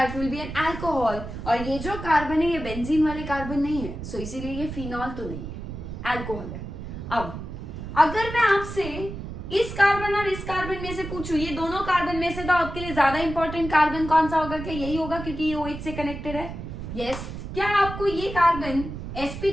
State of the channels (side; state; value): right; noise; rumble, 8 dB below the sound